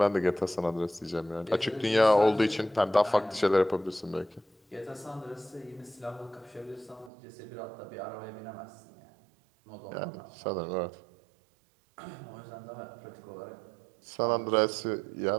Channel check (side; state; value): left; drops out; at 7.1 s